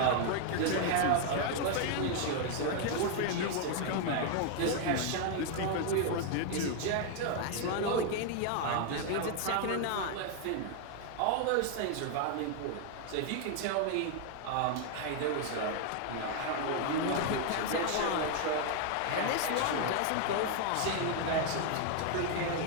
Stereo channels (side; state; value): both; different; correlation 0.00